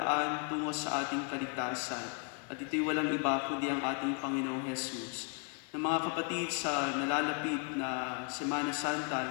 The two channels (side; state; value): right; quieter; 39.1 dB